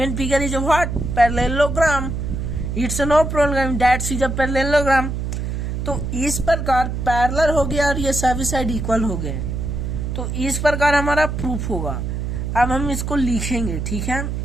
figure is a what? Parallelogram, it's a no problem, that is a parallelogram। तो इस प्रकार parallel हो गया और ये सभी साइड इक्वल हो गए, तो इस प्रकार हमारा प्रूफ होगा। अब हम इसको लिखेंगे, ठीक है,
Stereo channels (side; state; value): right; noise; hum, 3 dB below the sound